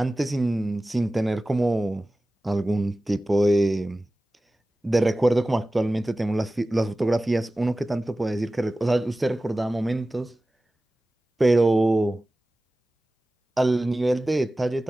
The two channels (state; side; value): normal; both; correlation 0.96